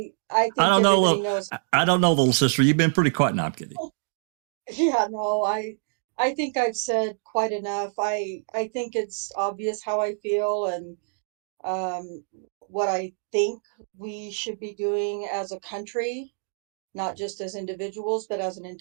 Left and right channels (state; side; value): silent; left; digital silence